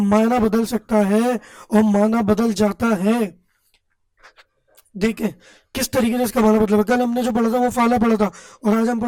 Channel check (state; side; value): identical; both; correlation 1.00